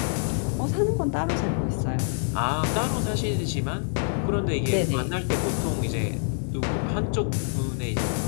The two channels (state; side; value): silent; right; digital silence